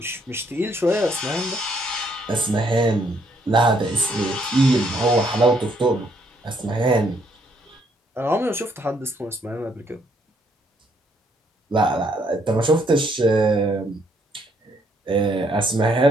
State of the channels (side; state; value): both; normal; correlation 0.70